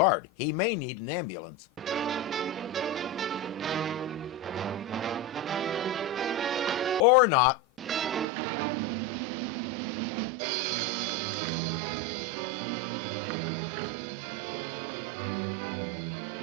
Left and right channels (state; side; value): drops out; left; at 8.2 s